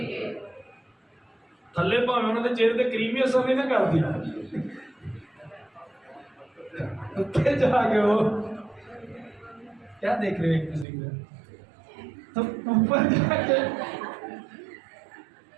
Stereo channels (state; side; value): drops out; left; at 10.9 s